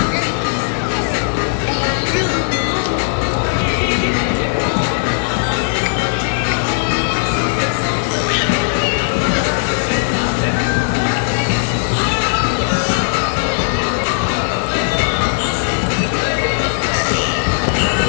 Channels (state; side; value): silent; right; 62 dB below the other